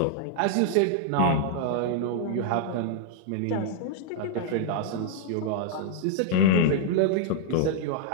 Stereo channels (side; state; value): both; different; correlation -0.01